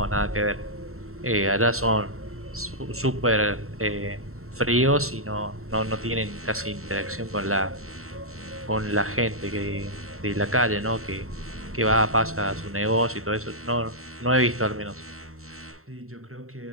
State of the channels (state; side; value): late; left; 0.63 ms